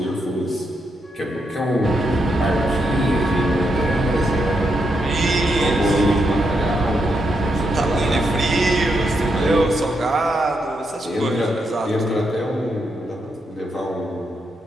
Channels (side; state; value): both; normal; correlation 0.81